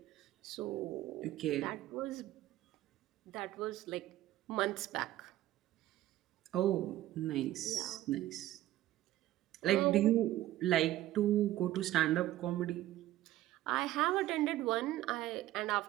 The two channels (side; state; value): left; quieter; 14.8 dB